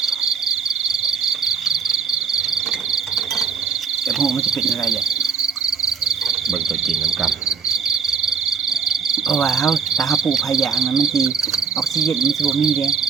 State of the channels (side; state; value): left; quieter; 6.2 dB